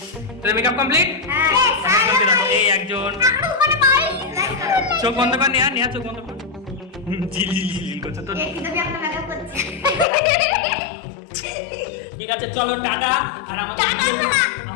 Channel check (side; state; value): right; drops out; at 10.1 s